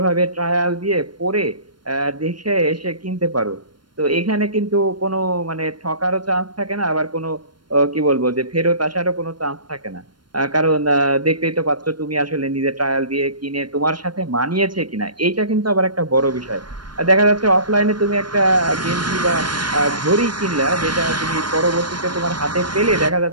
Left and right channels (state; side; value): late; left; 0.72 ms